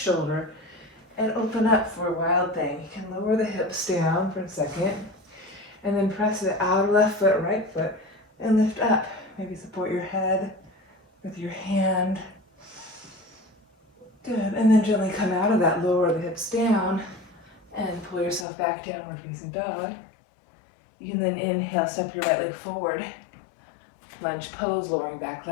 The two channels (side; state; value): right; drops out; at 18.4 s